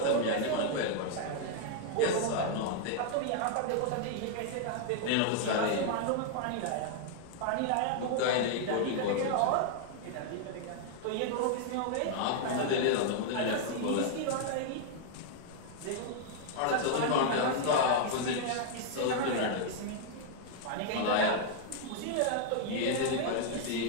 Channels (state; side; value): different; both; correlation 0.00